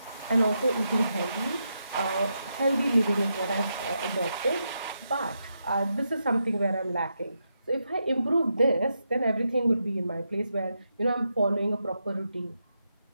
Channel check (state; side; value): inverted; both; correlation -0.84